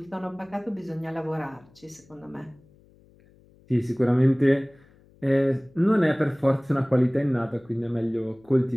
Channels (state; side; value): noise; left; hum, 29 dB below the sound